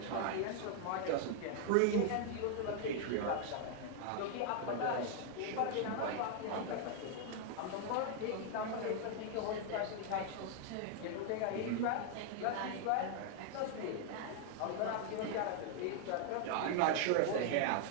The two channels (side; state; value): both; different; correlation 0.00